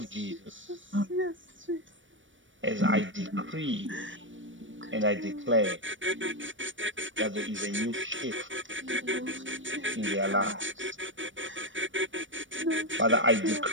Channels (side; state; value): left; late; 0.56 ms